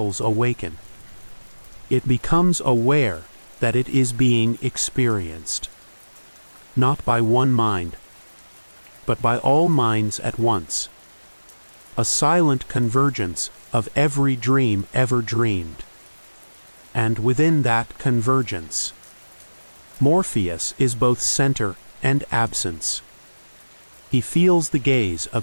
awaken. It becomes aware that it is being experienced, not by one mind, but by all minds at once. A silent convergence of every dream ever dreamed. And within that convergence, Morpheus is both center and absence. He feels the gaze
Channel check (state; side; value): inverted; both; correlation -1.00